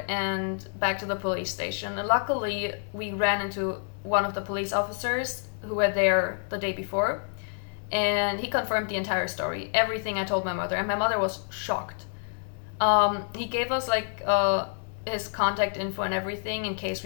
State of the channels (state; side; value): silent; right; digital silence